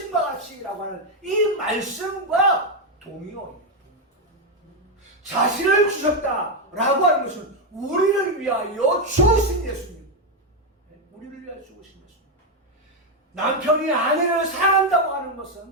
같이라고 하는 이 말씀과 동의어예요. 자신을 주셨다라고 하는 것은 우리를 위하여 죽으신 예수님. 우리를 위하여 죽으신 예수님. 남편이 아내를 사랑한다고 하는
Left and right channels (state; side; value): normal; both; correlation 0.04